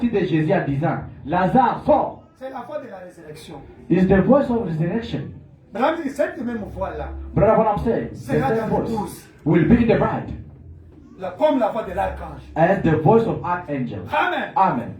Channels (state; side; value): identical; both; correlation 1.00